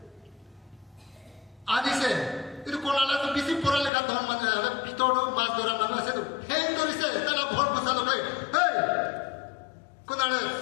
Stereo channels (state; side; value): drops out; right; at 3.9 s